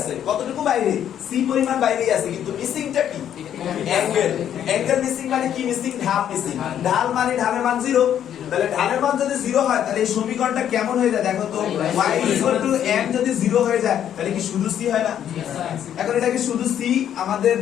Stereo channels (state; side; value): quieter; right; 10.0 dB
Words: কতটুকু বাইরে? সি পরিমাণ বাইরেই আছে, কিন্তু মিসিংটা কি? অ্যাঙ্গেল। অ্যাঙ্গেল মিসিং মানে কি মিসিং? ঢাল মিসিং। ঢাল মানে ঢালের মান 0। তাহলে ঢালের মান যদি 0 হয় তাহলে এই সমীকরণটা কেমন হয়ে যায় দেখো তো? y m যদি 0 হয়ে যায় তাহলে কি শুধু c হয় না? এখন এটা কি শুধু c? আমাদের